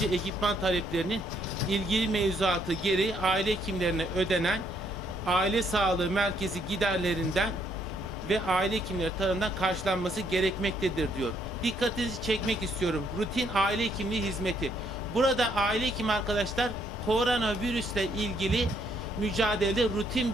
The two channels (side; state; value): left; noise; hum, 11 dB below the sound